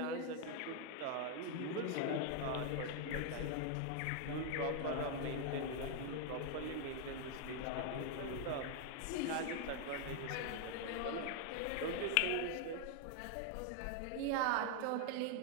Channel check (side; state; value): both; different; correlation 0.00